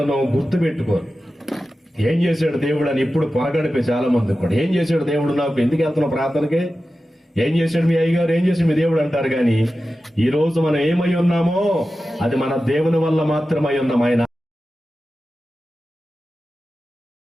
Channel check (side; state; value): both; normal; correlation 0.93